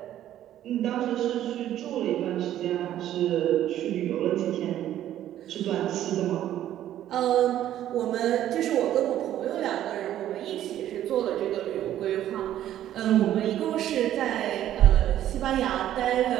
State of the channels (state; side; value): quieter; left; 12.1 dB